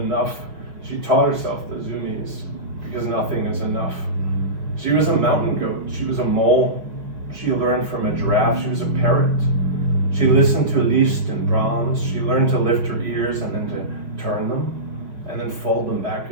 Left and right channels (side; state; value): left; late; 5.6 ms